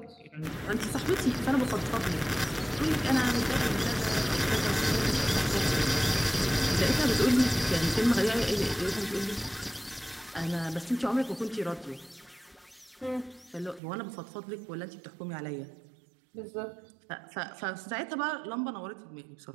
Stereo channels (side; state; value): left; drops out; at 13.8 s